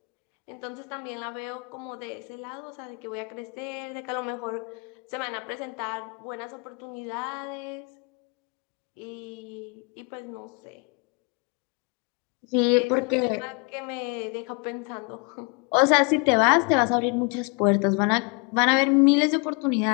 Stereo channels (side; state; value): right; quieter; 33.1 dB